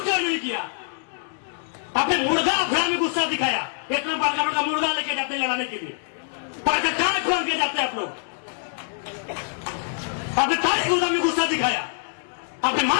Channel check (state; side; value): silent; right; digital silence